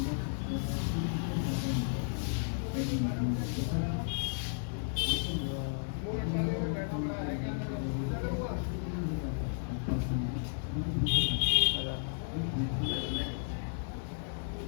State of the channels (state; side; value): silent; right; digital silence